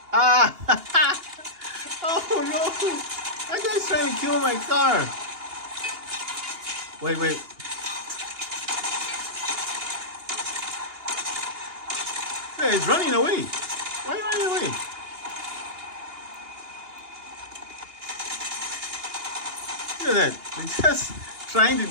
Ah, oh no, that guy's trying to kill my car. Wait. Yeah, he's running away. Why are you running away? Look at that. He's just trying to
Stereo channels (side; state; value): left; late; 2.8 ms